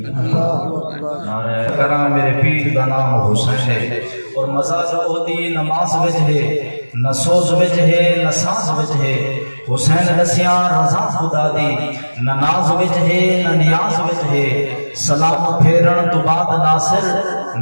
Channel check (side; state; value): both; inverted; correlation -1.00